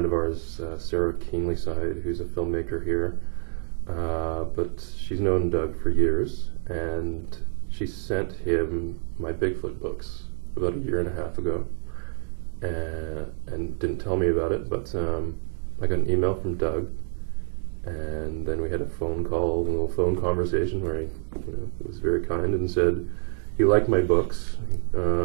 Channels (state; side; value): silent; left; 60 dB below the other